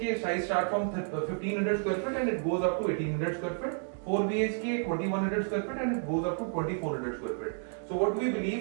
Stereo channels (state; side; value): silent; left; 57 dB below the other